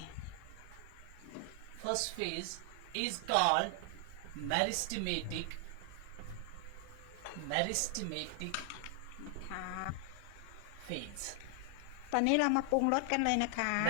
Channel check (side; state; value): both; different; correlation 0.00